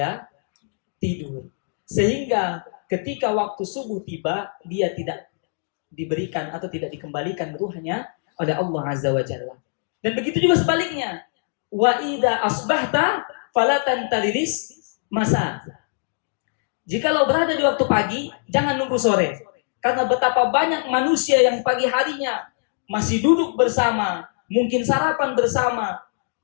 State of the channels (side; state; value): right; silent; 64 dB below the other